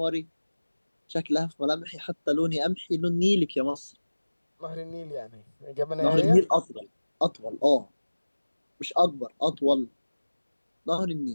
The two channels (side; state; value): both; inverted; correlation -1.00